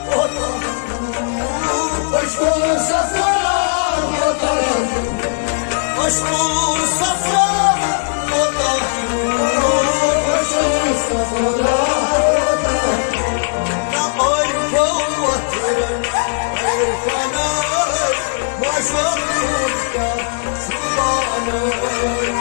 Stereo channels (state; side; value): silent; right; digital silence